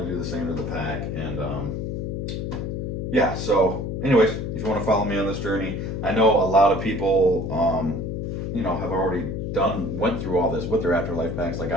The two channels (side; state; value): left; noise; hum, 3 dB below the sound